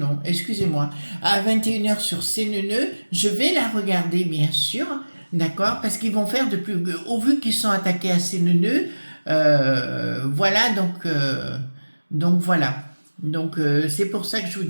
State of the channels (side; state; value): both; inverted; correlation -1.00